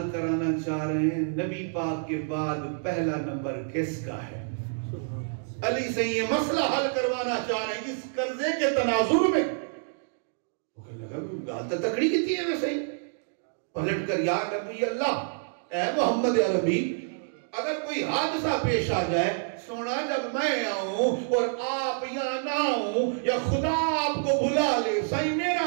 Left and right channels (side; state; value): left; silent; digital silence